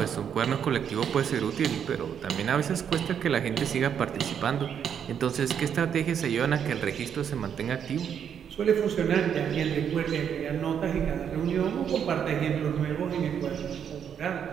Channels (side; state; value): left; quieter; 8.2 dB